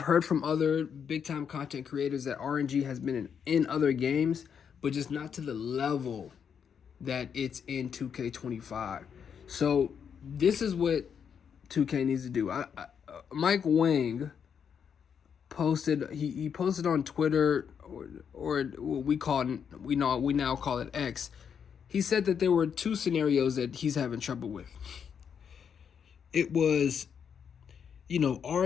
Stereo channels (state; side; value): quieter; right; 7.4 dB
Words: heard from other big time content creators that RNG has been in other games, but just not to the level that it's in 2K25. So this is what 2K needs to do. Mike Wang posted, he posted on Twitter, or we now call it X. He said that there were 2 scenarios that he's having trouble with. It was,